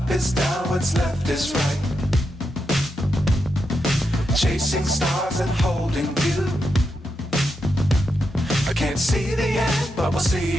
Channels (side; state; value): both; normal; correlation 0.85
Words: is down, what's left is right. Chasing stars and holding you. I can't see the end, but we'll see